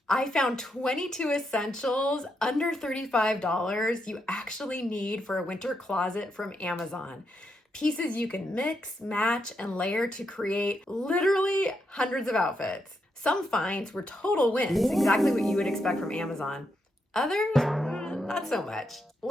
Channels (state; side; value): normal; both; correlation 0.82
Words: I found 22 essentials under $35 you actually need for a winter closet from Amazon. Pieces you can mix, match, and layer to create literally hundreds of outfits. Some finds were total wins, exactly what you would expect from Amazon. Others, not so much.